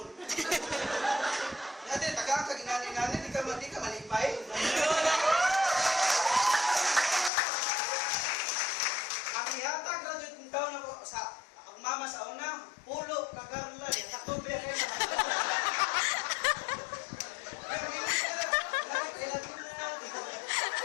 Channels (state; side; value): drops out; right; at 7.3 s